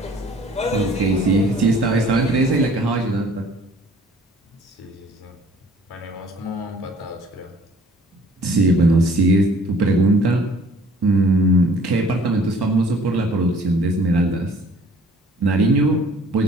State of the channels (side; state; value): both; normal; correlation 0.54